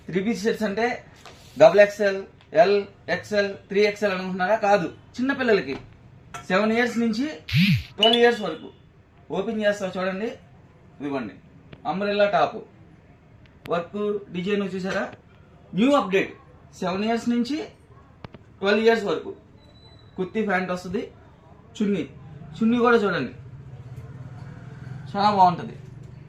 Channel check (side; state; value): both; identical; correlation 1.00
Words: పీస్ సెట్స్ అంటే XXL, L, XL, 3XL అనుకుంటున్నారా? కాదు, చిన్న పిల్లలకి 7 years నుంచి 12 years వరకు. ఓపెన్ చేస్తా చూడండి, ఇవ్వండి. అంబ్రెల్లా టాప్ వర్క్ డిజైన్ చూసారా? New update. 7 years నుంచి 12 years వరకు. కుర్తీ ప్యాంట్ వస్తుంది. చున్నీ కూడా చూడండి, చాలా బాగుంటుంది.